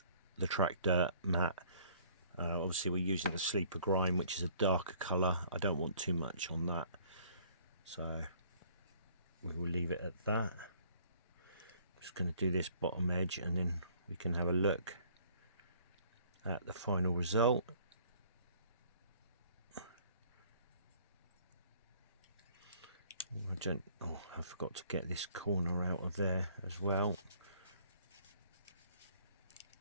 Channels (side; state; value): both; inverted; correlation -0.57